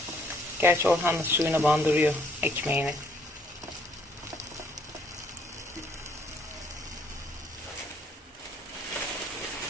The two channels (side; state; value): both; normal; correlation 0.65